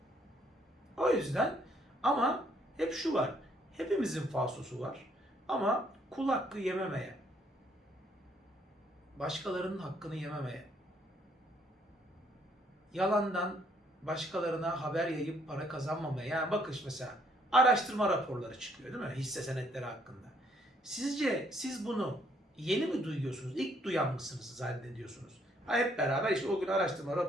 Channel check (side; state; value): both; normal; correlation 0.68